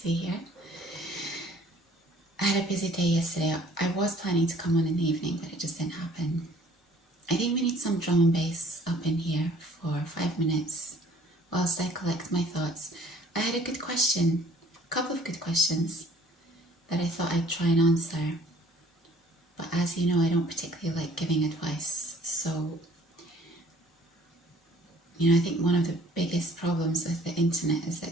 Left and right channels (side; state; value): both; normal; correlation 0.55